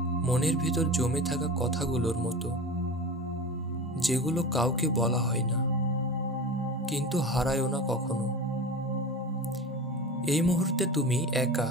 মনের ভিতর জমে থাকা কথাগুলোর মতো, যেগুলো কাউকে বলা হয় না, কিন্তু হারায়ও না কখনো। এই মুহূর্তে তুমি একা,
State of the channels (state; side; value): normal; both; correlation 0.31